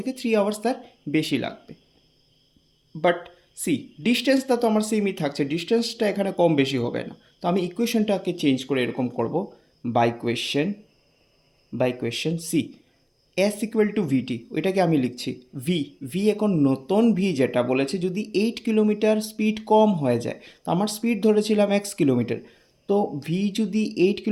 3 আওয়ার্স তার বেশি লাগবে। বাট সি, ডিস্টেন্সটা তো আমার সেমই থাকছে, ডিস্টেন্সটা এখানে কম বেশি হবে না, তো আমি ইকুয়েশনটাকে চেঞ্জ করে এরকম করব, by question see s equal to vt, ওইটাকে আমি লিখছি ভি এখন নতুন ভি যেটা বলেছে যদি 8 কিলোমিটার স্পিড কম হয়ে যায়, তো আমার স্পিড ধরেছিলাম x কিলোমিটার, তো ভি যদি 8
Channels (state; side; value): identical; both; correlation 1.00